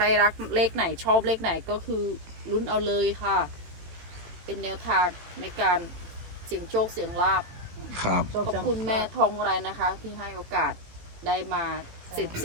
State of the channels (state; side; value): late; left; 18 ms